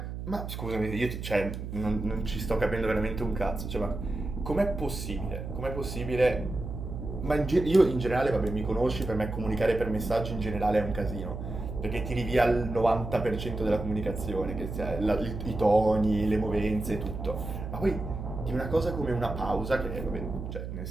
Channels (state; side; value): noise; right; hum, 7 dB below the sound